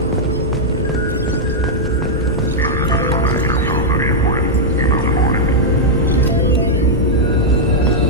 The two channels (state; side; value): normal; both; correlation -0.05